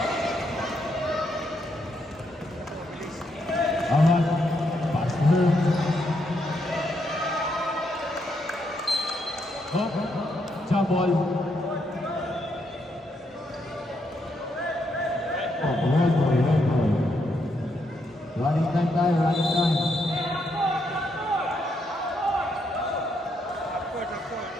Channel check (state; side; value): normal; both; correlation 0.78